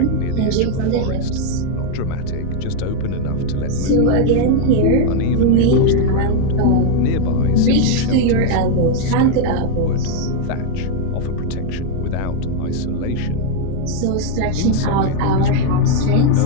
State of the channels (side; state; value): both; different; correlation 0.00